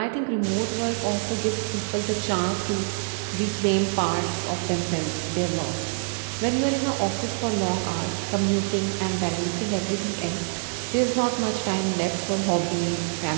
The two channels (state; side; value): silent; left; 61 dB below the other